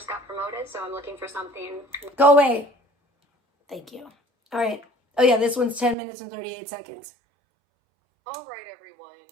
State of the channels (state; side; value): drops out; left; at 6.0 s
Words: got promoted, so I'm looking for something. Go away. Thank you. All right. Oh, yeah, this one's 10 minutes and 38 seconds. All right, everyone.